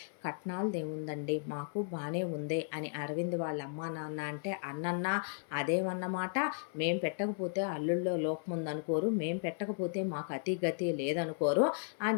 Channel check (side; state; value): right; silent; 54 dB below the other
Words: కట్నాలదేముందండి మాకు బానే ఉంది అని అరవింద్ వాళ్ళ అమ్మా నాన్న అంటే అన్నన్నా అదేమన్నమాట, మేం పెట్టకపోతే అల్లుల్లో లోపం ఉందనుకోరు, మేం పెట్టకపోతే మాకు అతి గతి లేదనుకోరు